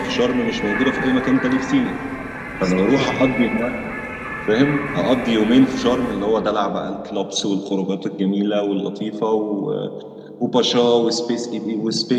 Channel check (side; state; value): both; identical; correlation 1.00